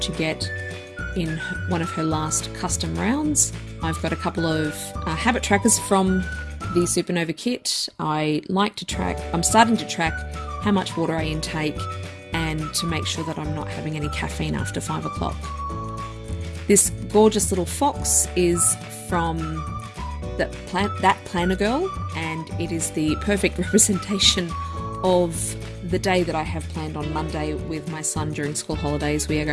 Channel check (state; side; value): identical; both; correlation 1.00